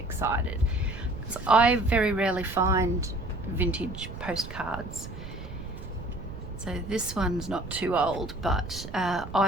because I very rarely find vintage postcards. So this one's not too old, but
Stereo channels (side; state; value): right; noise; rumble, 11 dB below the sound